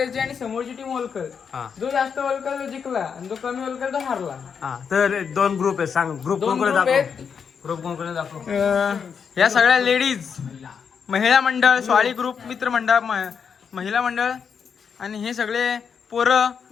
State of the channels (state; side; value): quieter; right; 6.6 dB